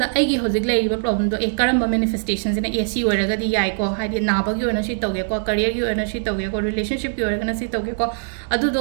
आइगी होजिक लेरिबा प्रॉब्लम दो ए करम्बा मैनिफेस्टेशन सिना एसी ओरगदी याइ को हाइदि नाबगी ओना सि तौगे को करियर की ओना सि तौगे को रिलेशनशिप की ओरगना सि तौगे को अदु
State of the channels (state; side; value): silent; left; digital silence